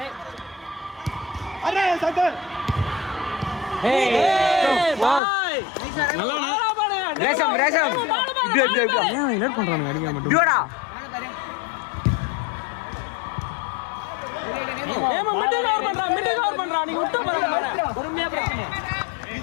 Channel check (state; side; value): drops out; right; at 5.2 s